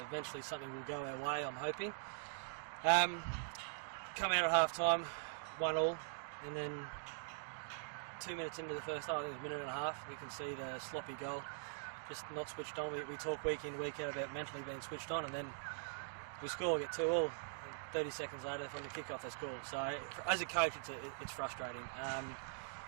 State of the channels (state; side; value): silent; left; digital silence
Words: something will go our way, I'm hoping. Come out at half time, 1-1, and then 2 minutes into the first half, I think it was a minute and a half, we can see the sloppy goal, just not switched on. We talk week in, week out about mentally being switched on, and then we score, get 2-2. 30 seconds later from the kick-off they score. So as a coach, it's frustrating.